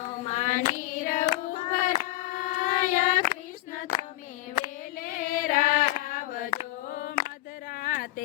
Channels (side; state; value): right; quieter; 17.7 dB